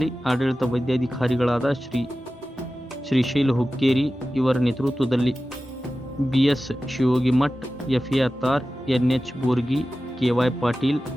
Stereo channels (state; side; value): normal; both; correlation 0.95